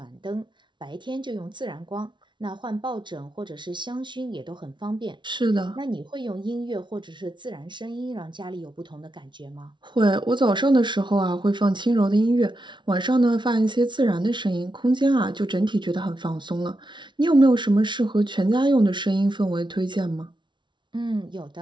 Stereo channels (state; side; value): late; left; 0.23 ms